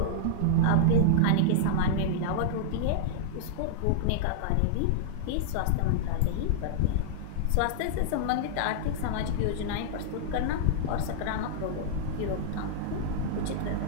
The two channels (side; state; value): both; different; correlation -0.01